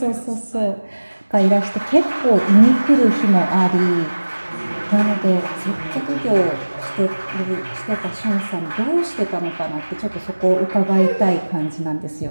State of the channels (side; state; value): both; inverted; correlation -1.00